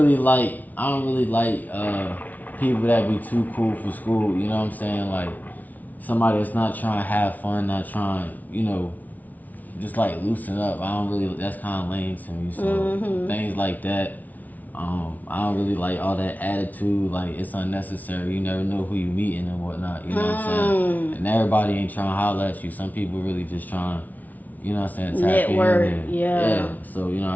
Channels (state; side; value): late; right; 0.077 ms